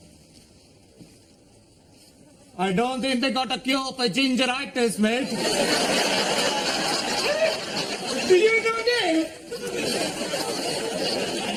I don't think they got a cure for gingeritis, mate. Did you do it?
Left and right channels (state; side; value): identical; both; correlation 1.00